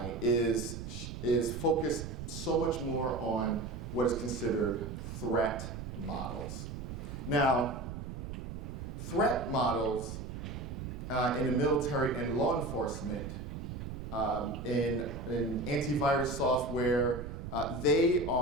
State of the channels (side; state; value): right; noise; rumble, 7 dB below the sound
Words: is focused so much more on what is considered threat models. Now, threat models in the military and law enforcement, in antivirus software, they